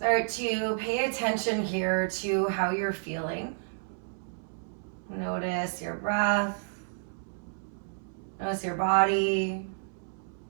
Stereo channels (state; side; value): silent; left; 57 dB below the other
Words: to pay attention here to how you're feeling. Notice your breath. Notice your body.